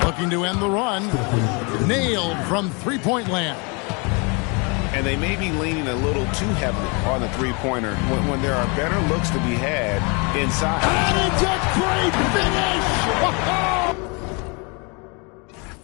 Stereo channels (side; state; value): right; quieter; 31.8 dB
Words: Looking to end the run. Nailed from three-point land. And they may be leaning a little too heavily on the three-pointer when there are better looks to be had inside. And it's a great finish!